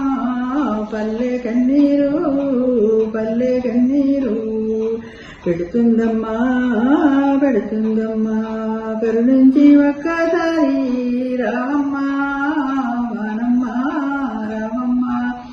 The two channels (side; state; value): both; identical; correlation 1.00